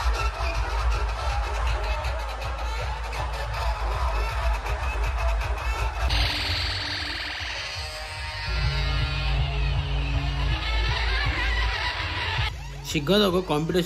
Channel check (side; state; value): both; identical; correlation 1.00